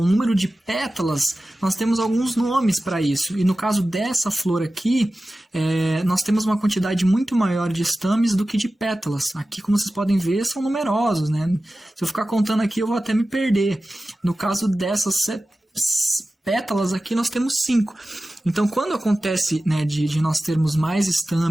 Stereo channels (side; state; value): both; normal; correlation 0.95